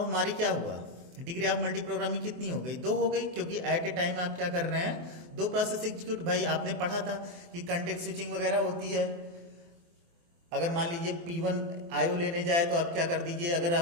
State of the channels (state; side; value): late; left; 24 ms